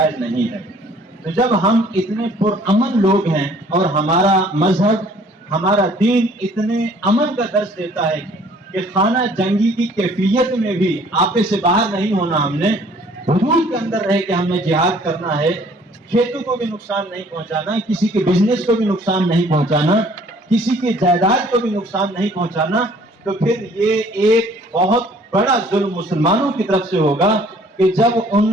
نہیں ہے۔ تو جب ہم اتنے پرامن لوگ ہیں اور ہمارا مذہب، ہمارا دین اتنے امن کا درس دیتا ہے کہ خانہ جنگی کی کیفیت میں بھی آپے سے باہر نہیں ہونا، ہم نے حدود کے اندر رہ کے ہم نے جہاد کرنا ہے، کھیتوں کو بھی نقصان نہیں پہنچانا، کسی کے بزنس کو بھی نقصان نہیں پہنچانا، کسی کے جائیداد کو بھی نقصان نہیں پہنچانا، تو پھر یہ ایک بہت بڑا ظلم مسلمانوں کی طرف سے ہوگا کہ جب ان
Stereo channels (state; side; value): normal; both; correlation 0.57